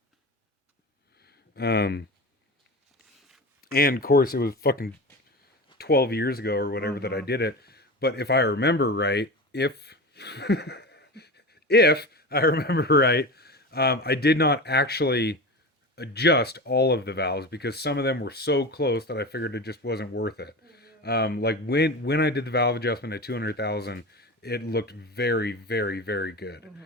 And of course it was fucking 12 years ago or whatever that I did it. But if I remember right, if I remember right, I did not actually adjust all of the valves because some of them were so close that I figured it just wasn't worth it. Like when I did the valve adjustment at 200,000, it looked very, very, very good.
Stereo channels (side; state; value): both; normal; correlation 0.27